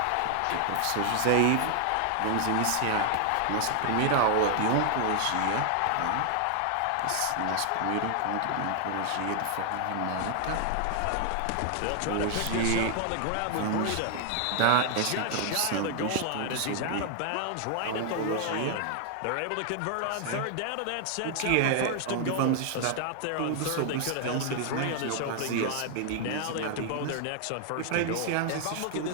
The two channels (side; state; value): both; different; correlation 0.00